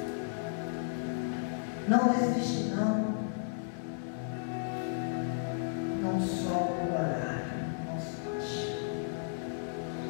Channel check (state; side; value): silent; right; digital silence